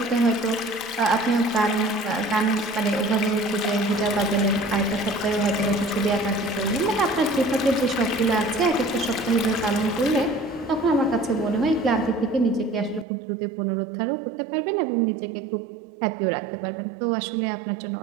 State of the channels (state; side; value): drops out; left; at 13.1 s